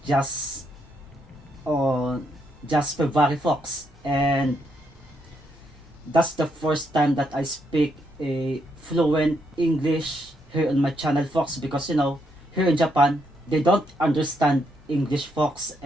just February, folks, and that's the first time that I speak a fluent English here on my channel, folks, because here in Japan they don't understand English, folks,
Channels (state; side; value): normal; both; correlation 0.77